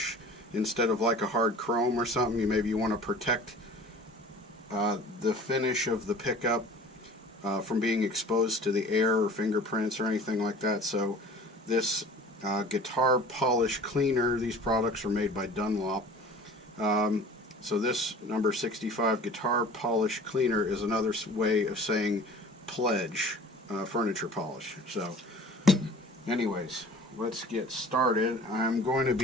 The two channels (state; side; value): normal; both; correlation 0.44